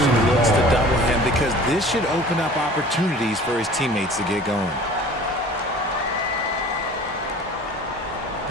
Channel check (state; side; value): normal; both; correlation 0.44